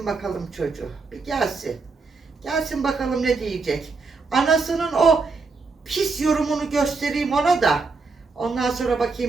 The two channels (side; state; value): left; quieter; 4.2 dB